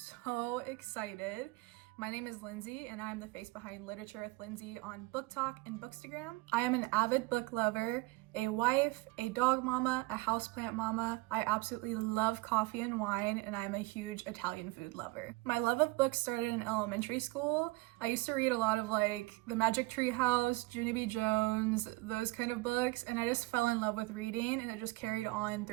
excited. My name is Lindsay and I'm the face behind Literature with Lindsay on BookTok and Bookstagram. I am an avid book lover, a wife, a dog mama, a houseplant mama. I absolutely love coffee and wine, and I'm a huge Italian food lover. My love of books started in elementary school. I used to read a lot of like The Magic Tree House, Junie B. Jones, those kind of books, and I just fell in love with reading, and it just carried on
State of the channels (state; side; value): quieter; left; 22.2 dB